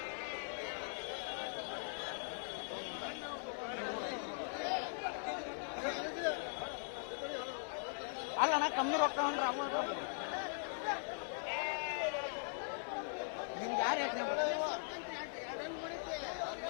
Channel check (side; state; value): right; silent; digital silence